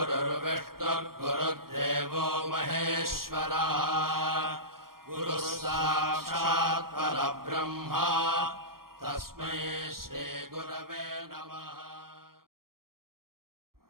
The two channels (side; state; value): left; late; 0.92 ms